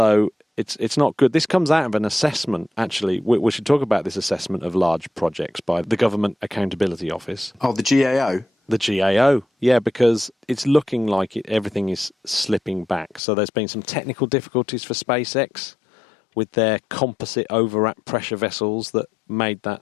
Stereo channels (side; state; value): right; drops out; at 13.2 s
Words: it's not good. This comes out of an assessment, actually. We should talk about this assessment of large projects by the Government Accountability Office. Oh, the GAO? The GAO, yeah, because it's looking like everything is slipping back. So there's been some technical difficulties for SpaceX with their composite overwrap pressure vessels that made that